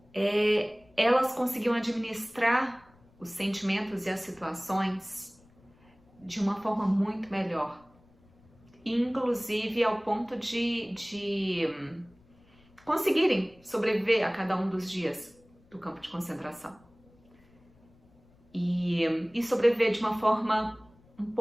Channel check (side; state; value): left; noise; rumble, 29 dB below the sound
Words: elas conseguiam administrar os sentimentos e as situações de uma forma muito melhor. Inclusive ao ponto de conseguirem sobreviver a cada um dos dias do campo de concentração. E sobreviver de uma forma um